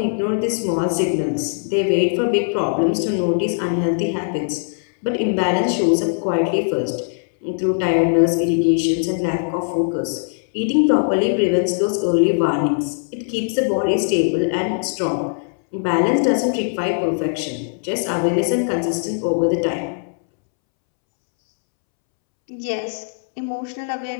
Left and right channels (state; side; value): silent; right; 66 dB below the other